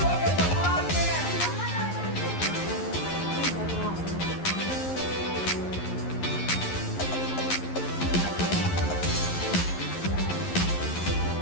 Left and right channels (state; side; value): late; right; 11 ms